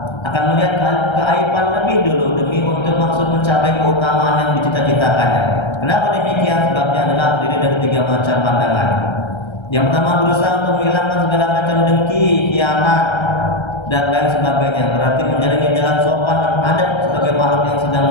akan melihat keaiban lebih dulu demi untuk maksud mencapai keutamaan yang dicita-citakannya. Kenapa demikian? Sebabnya adalah terdiri dari 3 macam pandangan. Yang pertama, berusaha untuk menghilangkan segala macam dengki, khianat, dan lain sebagainya. Berarti menjalani jalan sopan dan adat sebagai makhluk yang sedang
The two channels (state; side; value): late; right; 1.3 ms